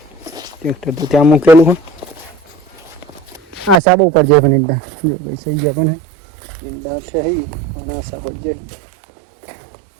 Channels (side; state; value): left; drops out; at 3.8 s